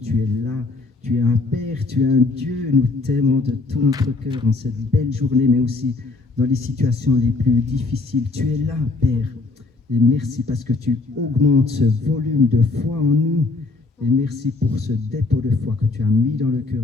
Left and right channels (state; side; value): quieter; right; 3.6 dB